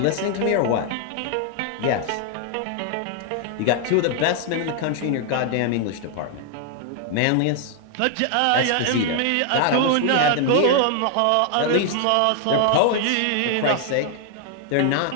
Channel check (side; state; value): both; different; correlation 0.00